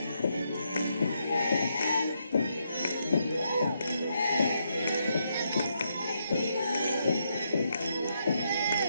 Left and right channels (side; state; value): both; inverted; correlation -0.79